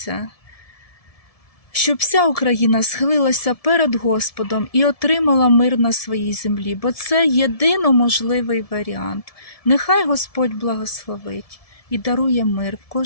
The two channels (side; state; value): right; late; 1.7 ms